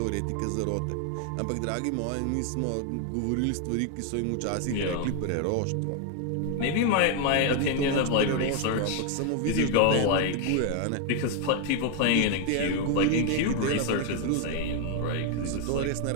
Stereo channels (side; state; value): both; different; correlation 0.00